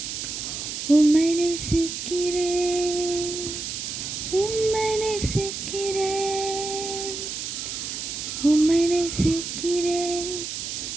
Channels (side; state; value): right; noise; hiss, 5 dB below the sound